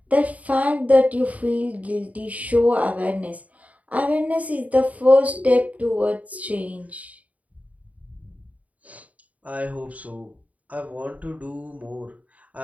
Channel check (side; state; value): left; late; 0.070 ms